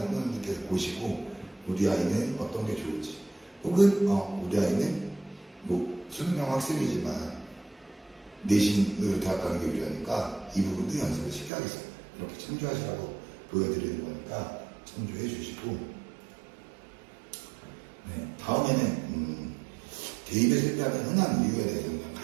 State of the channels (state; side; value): drops out; left; at 11.5 s